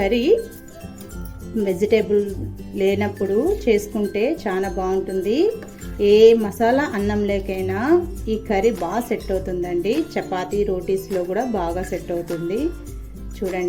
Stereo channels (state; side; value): identical; both; correlation 1.00